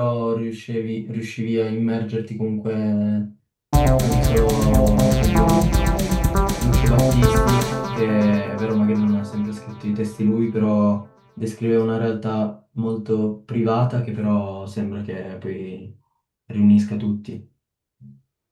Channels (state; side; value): identical; both; correlation 1.00